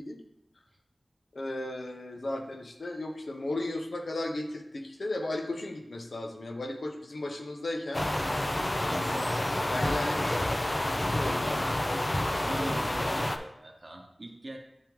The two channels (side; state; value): both; normal; correlation 0.98